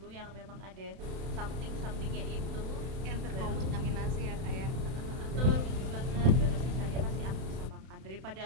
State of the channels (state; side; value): late; left; 31 ms